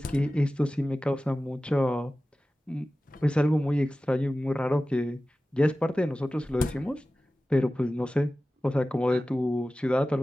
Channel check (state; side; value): normal; both; correlation 0.96